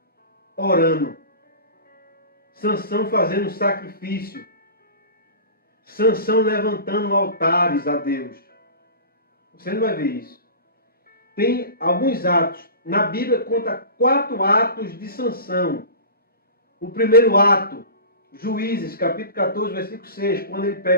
orando, Sansão fazendo sacrifício, Sansão levantando altares a Deus. Você não vai ver isso. Tem alguns atos. Na Bíblia conta 4 atos de Sansão. O primeiro ato, Juízes, capítulo 14, versículo 6, quando ele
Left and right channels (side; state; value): both; inverted; correlation -0.35